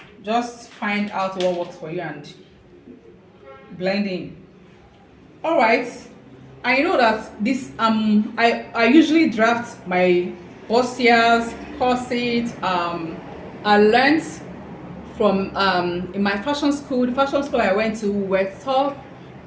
Just find out what works for you and blend in. All right, I know that this I usually draft my bustiers, corsets. I learned from in my fashion school. The fashion school I went to, were taught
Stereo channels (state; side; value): identical; both; correlation 1.00